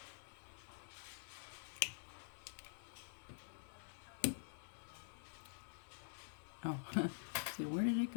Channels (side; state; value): right; silent; digital silence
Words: Oh, see, where did it